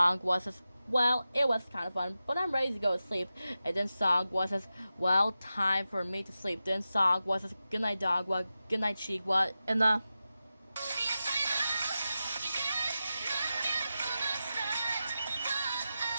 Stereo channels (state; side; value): inverted; both; correlation -0.92